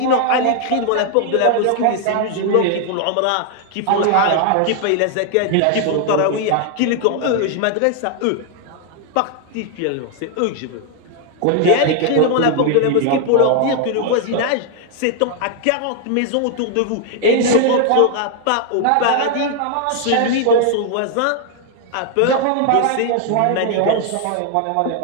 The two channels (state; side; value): different; both; correlation 0.00